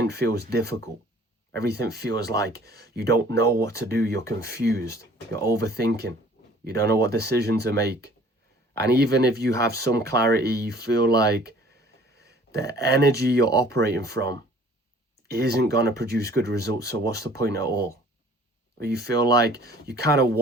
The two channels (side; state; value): both; normal; correlation 0.52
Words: feels difficult. Everything feels like you don't know what to do. You're confused. You're overthinking. You don't know what decision to make. And even if you have some clarity, you feel like the energy you're operating from isn't going to produce good results. So what's the point at all? Or you feel like you kind of